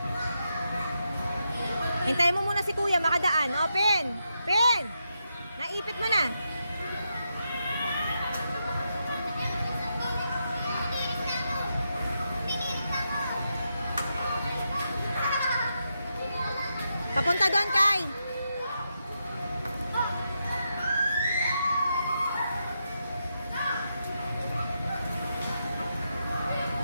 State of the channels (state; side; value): inverted; both; correlation -0.84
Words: Hintayin mo muna si Kuya, makadaan. O, Pen! Pen! Naipit mo na. Papunta doon, Kai.